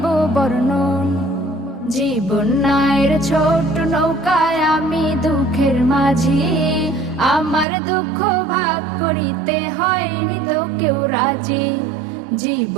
বর্ণন। জীবন নায়ের ছোট নৌকায় আমি দুঃখের মাঝি, আমার দুঃখ ভাগ করিতে হয়নি তো কেউ রাজি।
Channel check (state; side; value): drops out; left; at 7.7 s